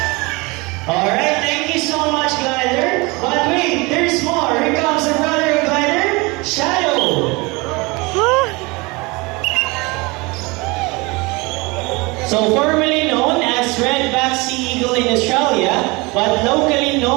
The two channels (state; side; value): quieter; left; 25.5 dB